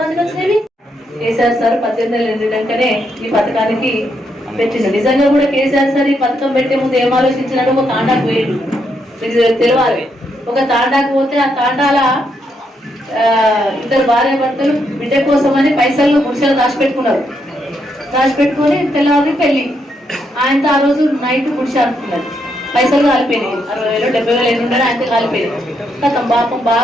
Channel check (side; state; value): both; normal; correlation 0.78